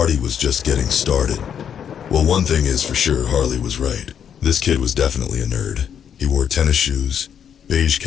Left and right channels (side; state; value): right; quieter; 8.4 dB